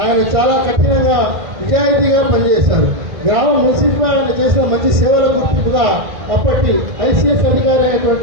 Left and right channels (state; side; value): late; left; 1.5 ms